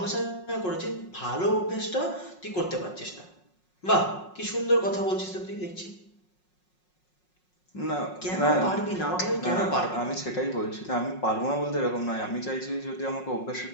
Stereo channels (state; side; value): late; right; 5.5 ms